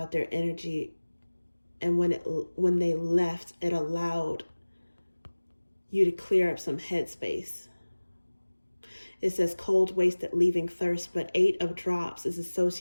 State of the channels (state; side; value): inverted; both; correlation -1.00